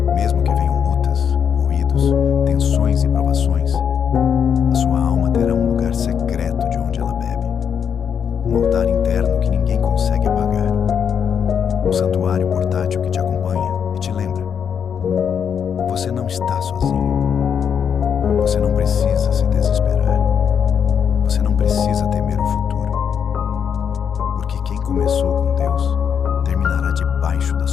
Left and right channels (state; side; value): quieter; right; 7.5 dB